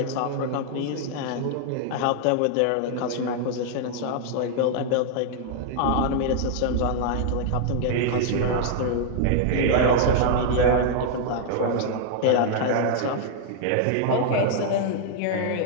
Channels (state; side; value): different; both; correlation -0.01